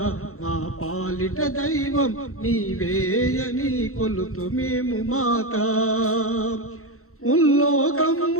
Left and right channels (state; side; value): late; right; 0.63 ms